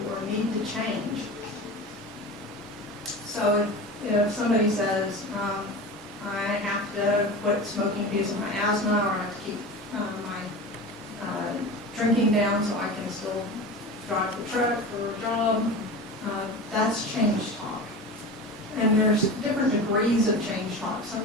or need to change. So if somebody says, I have to quit smoking because of my asthma, or I have to keep my drinking down so I can still drive the truck for a job, that's change talk. And there's different degrees of change talk. Some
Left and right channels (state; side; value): normal; both; correlation 0.31